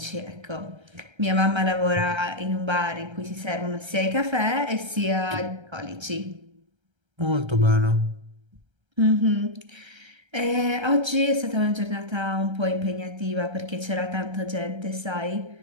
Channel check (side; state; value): left; late; 1.3 ms